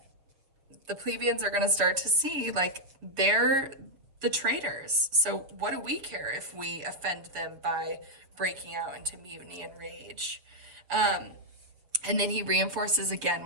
the plebeians are going to start to see like they're the traitors. So what do we care if we offend them by breaking out into mutiny and rage? And then he reinforces again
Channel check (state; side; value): late; left; 6.8 ms